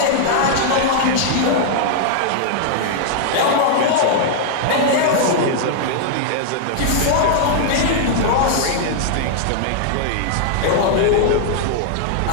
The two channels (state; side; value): different; both; correlation -0.01